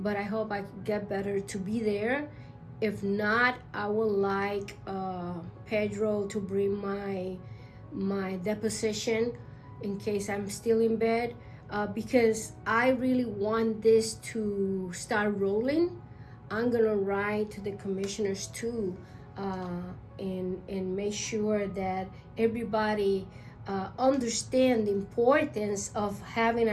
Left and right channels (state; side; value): identical; both; correlation 1.00